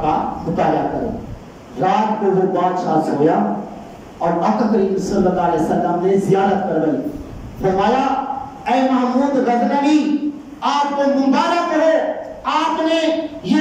کا مطالعہ کرے۔ رات کو وہ بادشاہ سویا اور آقا کریم صلی اللہ علیہ وسلم نے زیارت کروائی، فرمایا اے محمود غزنوی آپ کو مبارک ہو، آپ نے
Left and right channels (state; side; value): identical; both; correlation 1.00